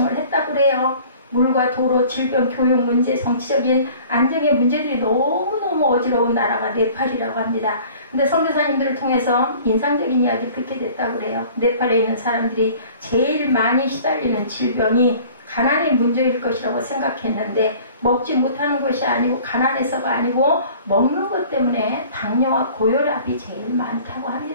했다고 그래요. 물과 도로, 질병, 교육 문제, 정치적인 안정의 문제들이 너무너무 어지러운 나라가 네팔이라고 합니다. 근데 선교사님들을 통해서 인상적인 이야기 듣게 됐다고 그래요. 네팔에 있는 사람들이 제일 많이 시달리는 질병이 가난의 문제일 것이라고 생각했는데 먹지 못하는 것이 아니고 가난해서가 아니고 먹는 것 때문에 당뇨와 고혈압이 제일 많다고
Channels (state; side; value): inverted; both; correlation -0.48